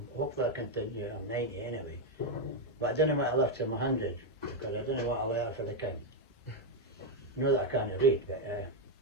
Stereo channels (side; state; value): both; normal; correlation 0.03